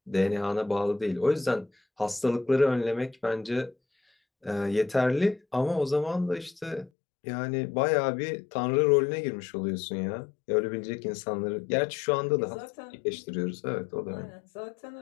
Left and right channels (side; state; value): right; drops out; at 6.9 s